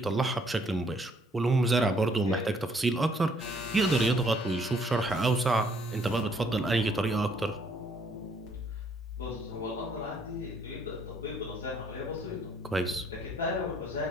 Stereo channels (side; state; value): both; normal; correlation 0.65